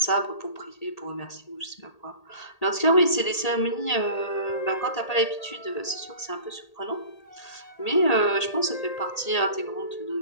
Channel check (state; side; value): late; right; 1.8 ms